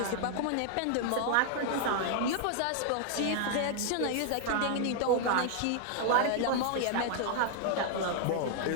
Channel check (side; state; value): both; different; correlation 0.00